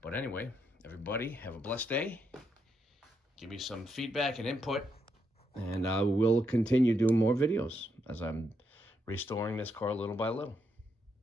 But anyway, everybody have a blessed day. Give me some feedback and input, and I will continue doing more videos as I'm restoring this car little by little.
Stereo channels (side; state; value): both; normal; correlation 0.79